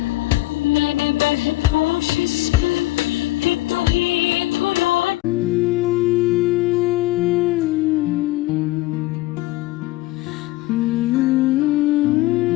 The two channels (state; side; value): quieter; right; 18.3 dB